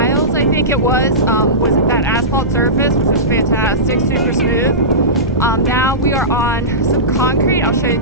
I think it was that asphalt surface, which was fantastic, super smooth. Now we are on some concrete. I'll show it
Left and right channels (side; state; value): both; normal; correlation -0.19